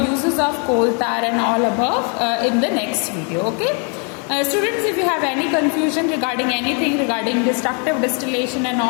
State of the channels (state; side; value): quieter; right; 38.0 dB